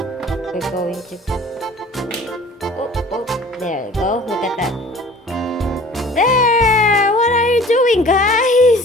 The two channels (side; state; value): both; normal; correlation 0.47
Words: going to. Oh, there you go. Look at that. There! What are you doing,